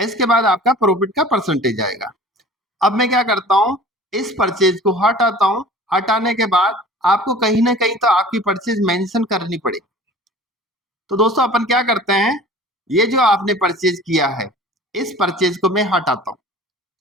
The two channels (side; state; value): both; normal; correlation 0.44